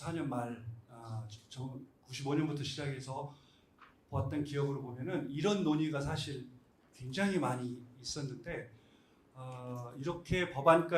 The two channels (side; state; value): both; identical; correlation 1.00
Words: 말, 95년부터 시작해서 봤던 기억으로 보면은 이런 논의가 사실 굉장히 많이 있었는데 이렇게